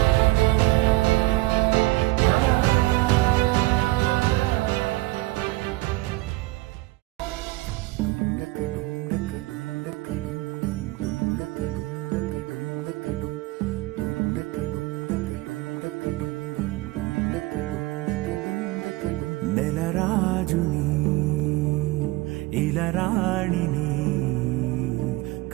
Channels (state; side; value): quieter; left; 20.5 dB